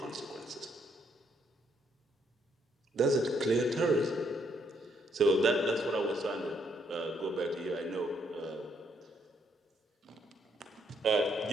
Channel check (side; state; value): both; normal; correlation 0.72